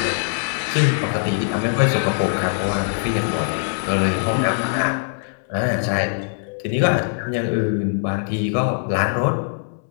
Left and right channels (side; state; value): right; silent; 64 dB below the other